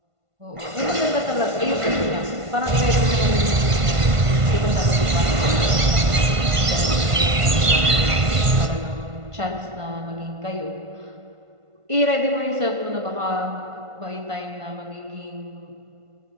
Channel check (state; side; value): late; left; 1.5 ms